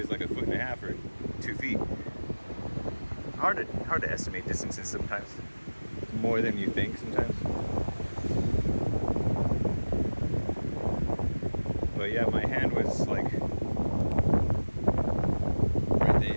like 1.5 feet or 2 feet. Hard to estimate distances sometimes. More than you think sometimes. But yeah, my hand was like right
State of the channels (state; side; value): inverted; both; correlation -1.00